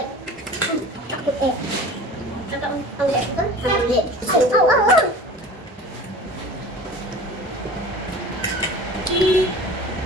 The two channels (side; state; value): both; normal; correlation 0.39